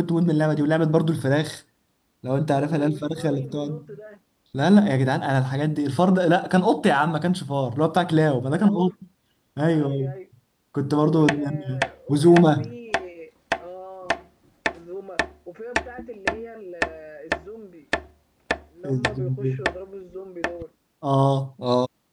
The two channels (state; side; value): identical; both; correlation 1.00